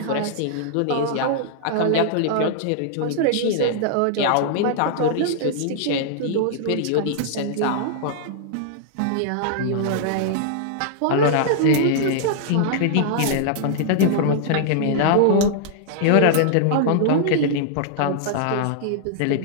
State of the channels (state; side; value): different; both; correlation -0.01